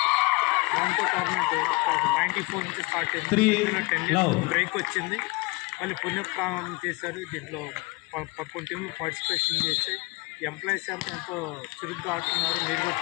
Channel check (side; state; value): right; quieter; 25.5 dB